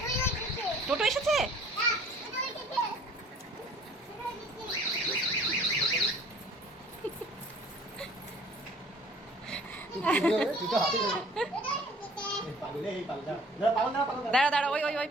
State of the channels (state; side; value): normal; both; correlation 0.52